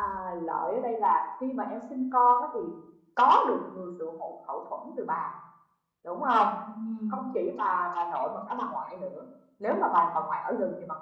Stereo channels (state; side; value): identical; both; correlation 1.00